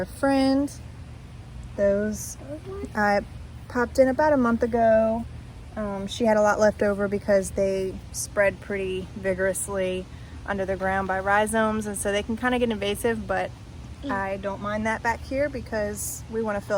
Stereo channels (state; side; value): identical; both; correlation 1.00